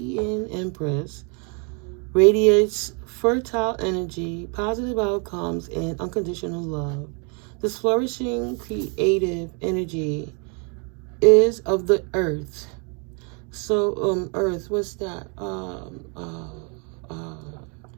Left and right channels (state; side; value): quieter; left; 35.9 dB